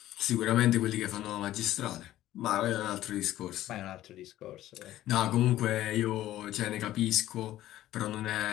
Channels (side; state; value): right; quieter; 14.1 dB